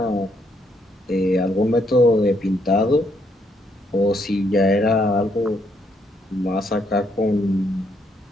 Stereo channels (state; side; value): normal; both; correlation 0.73